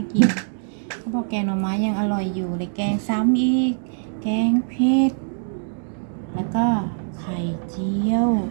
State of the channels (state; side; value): silent; left; digital silence